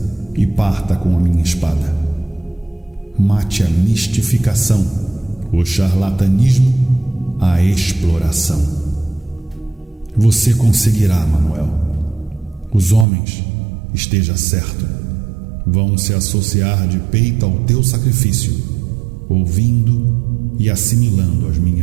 e parta com a minha espada. Mate a mistificação, o charlatanismo, a exploração. Você conseguirá, Manuel. Os homens, esteja certo, vão se associar de peito ao teu sacrifício, ouvindo e assimilando as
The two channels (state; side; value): drops out; left; at 13.1 s